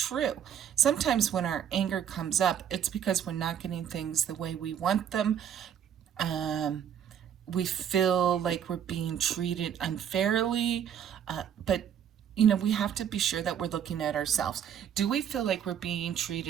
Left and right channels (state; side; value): quieter; left; 9.0 dB